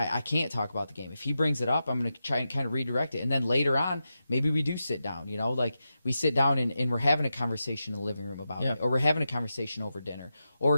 can't talk about the game. If he brings it up, I'm going to try and kind of redirect it. And then later on, maybe we do sit down, like we sit down and we're having a conversation in the living room about it, or we're having a conversation over dinner,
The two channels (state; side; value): inverted; both; correlation -0.90